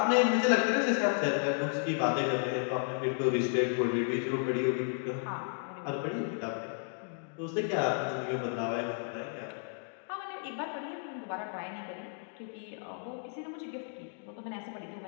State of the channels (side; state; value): right; silent; 56 dB below the other